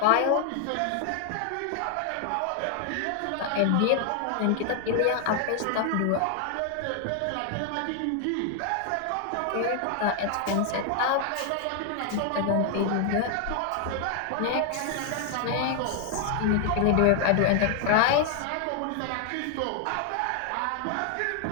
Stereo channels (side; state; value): both; different; correlation 0.00